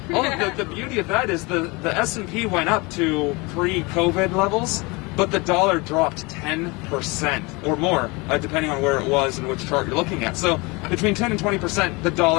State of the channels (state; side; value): quieter; right; 26.2 dB